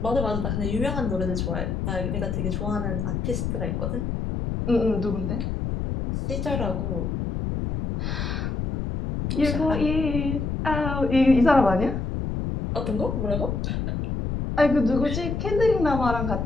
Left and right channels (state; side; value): noise; left; rumble, 2 dB below the sound